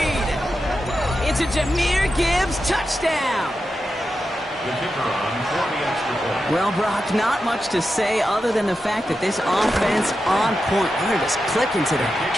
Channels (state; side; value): normal; both; correlation 0.89